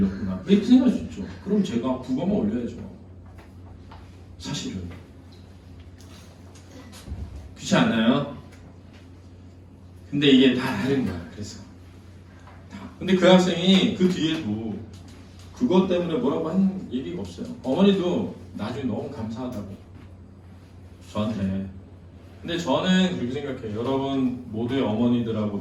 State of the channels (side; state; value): both; identical; correlation 1.00